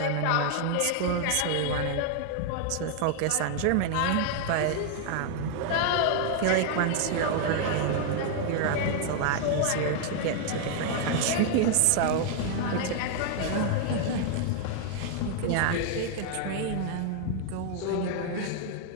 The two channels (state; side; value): different; both; correlation 0.00